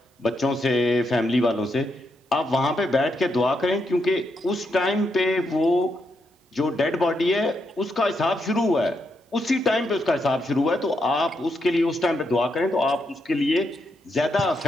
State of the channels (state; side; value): normal; both; correlation 0.81